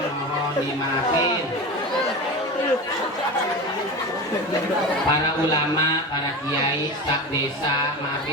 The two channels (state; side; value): normal; both; correlation 0.26